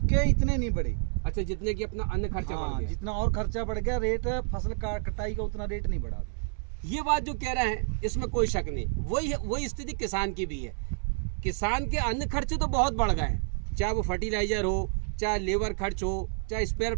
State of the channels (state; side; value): silent; left; 58 dB below the other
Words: इतने नहीं बढ़े। अच्छा, जितने की अपना अन्य खर्चा बढ़ गया। जितना और खर्चा बढ़ गया, रेट फसल कटाई का उतना रेट नहीं बढ़ा। ये बात जो कह रहे हैं इसमें कोई शक नहीं, वही स्थिति किसान की भी है। किसान के अन्य खर्चे तो बहुत बढ़ गए हैं, चाहे वो फर्टिलाइजर हो, चाहे लेबर खर्च हो, चाहे स्पेयर